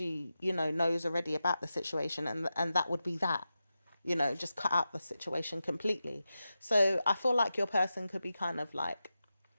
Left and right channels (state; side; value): inverted; both; correlation -0.91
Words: you know, knows already about the situation, and that would be that, you know, just cut out the situation completely. So I feel like your person could be kind of like